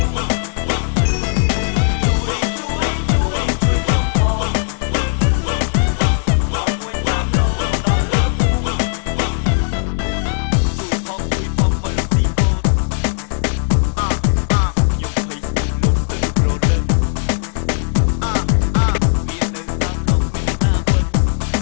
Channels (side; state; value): right; silent; digital silence